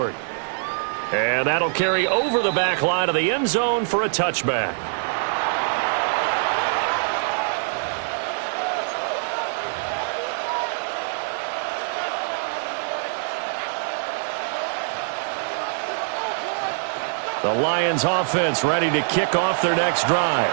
And that'll carry over the back line of the end zone for a touchback. The Lions offense ready to kick off their next drive.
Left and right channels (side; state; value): left; silent; digital silence